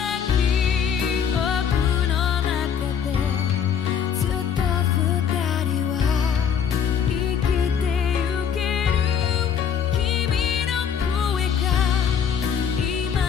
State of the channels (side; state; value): right; quieter; 7.6 dB